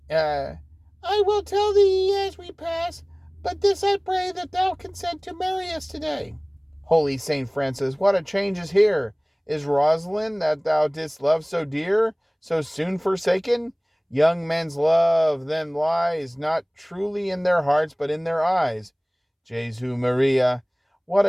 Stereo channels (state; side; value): identical; both; correlation 1.00